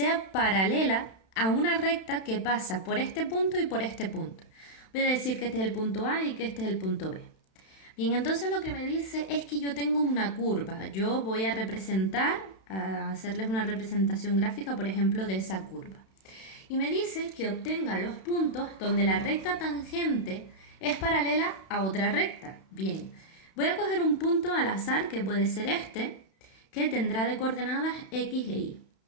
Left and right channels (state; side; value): late; right; 31 ms